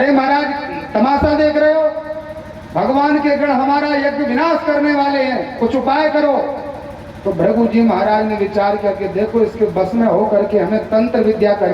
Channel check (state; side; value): identical; both; correlation 1.00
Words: महाराज तमाशा देख रहे हो, भगवान के गण हमारा यज्ञ विनाश करने वाले हैं, कुछ उपाय करो। तो भृगु जी महाराज ने विचार किया कि देखो इसके बस में हो करके हमें तंत्र विद्या